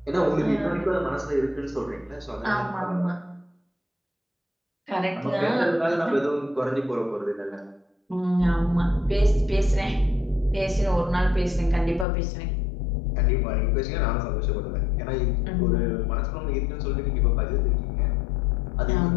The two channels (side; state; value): right; drops out; at 12.1 s